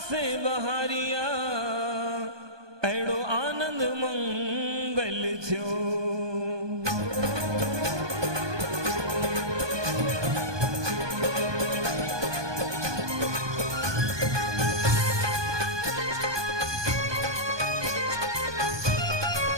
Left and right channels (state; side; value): late; left; 1.2 ms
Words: बहारिया अहिड़ो आनंद मंगल थियो।